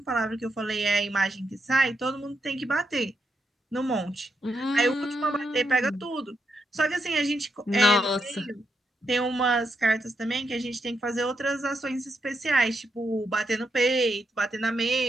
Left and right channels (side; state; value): both; normal; correlation 0.82